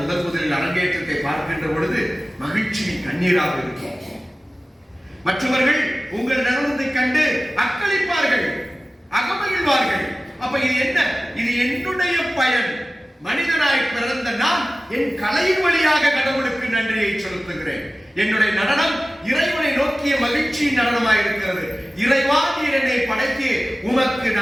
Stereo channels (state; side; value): normal; both; correlation 0.96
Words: முதலில் அரங்கேற்றத்தை பார்க்கின்ற பொழுது மகிழ்ச்சியின் கண்ணீராக இருக்கும். மற்றவர்கள் உங்கள் நடனத்தை கண்டு அக்களிப்பார்கள், அகமகிழ்வார்கள். அப்ப இது என்ன? இது என்னுடைய பயன். மனிதனாய் பிறந்த நான் என் கலையின் வழியாக கடவுளுக்கு நன்றியை செலுத்துகிறேன். என்னுடைய நடனம் இறைவனை நோக்கிய மகிழ்ச்சியின் நடனமாய் இருக்கிறது. இறைவா, நீர் என்னை படைத்து உமக்கு